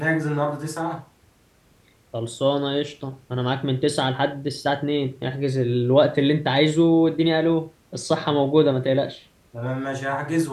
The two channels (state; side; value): identical; both; correlation 1.00